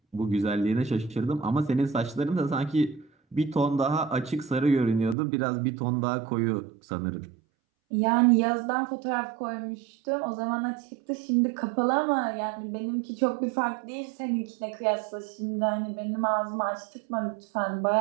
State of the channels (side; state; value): left; drops out; at 5.2 s